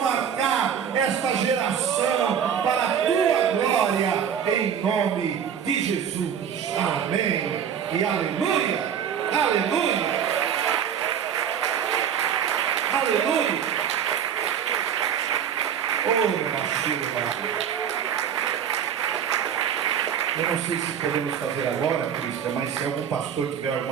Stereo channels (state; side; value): quieter; left; 8.3 dB